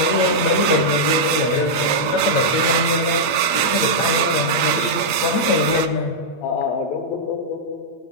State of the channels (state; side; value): late; right; 8.6 ms